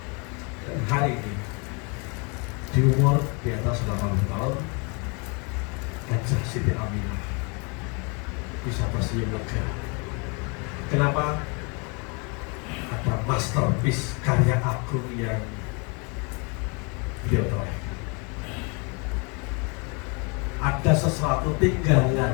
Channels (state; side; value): quieter; right; 32.8 dB